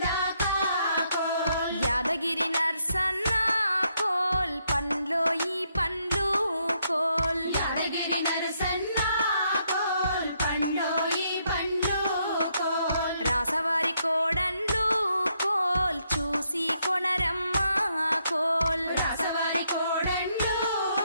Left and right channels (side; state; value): both; inverted; correlation -0.75